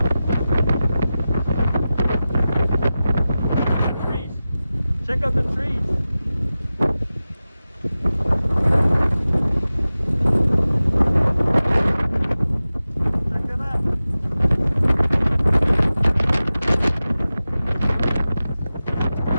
Trees. Check out the trees. Check it out.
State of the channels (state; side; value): inverted; both; correlation -0.95